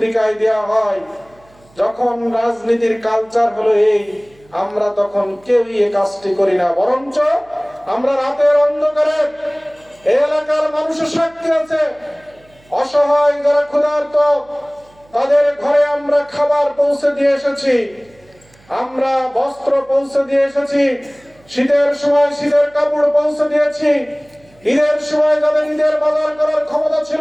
দেওয়া হয়, যখন রাজনীতির কালচার হলো এই, আমরা তখন কেউই এই কাজটি করি না। বরঞ্চ আমরা রাতের অন্ধকারে এই এলাকার মানুষের সাক্ষী আছে, অসহায় যারা ক্ষুধার্ত তাদের ঘরে আমরা খাবার পৌঁছে দিয়ে এসেছি, আমরা বস্ত্র পৌঁছে দিয়ে এসেছি, শীতের সময় শীতের কাপড় পৌঁছে দিয়েছি, ঈদের সময় যাদের ঈদের বাজার করার ক্ষমতা ছিল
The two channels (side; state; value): right; noise; hum, 30 dB below the sound